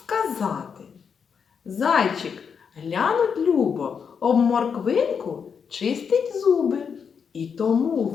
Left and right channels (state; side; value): quieter; right; 6.6 dB